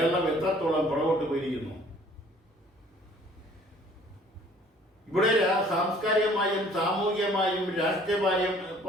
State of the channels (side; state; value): both; normal; correlation 0.55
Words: എത്രത്തോളം പുറകോട്ട് പോയിരിക്കുന്നു. ഇവിടെ സാംസ്കാരികമായും സാമൂഹികമായും